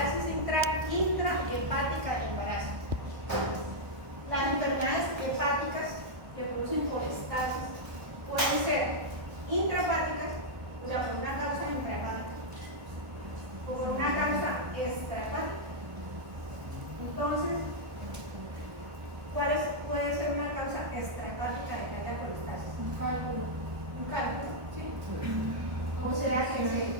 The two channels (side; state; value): left; late; 1.1 ms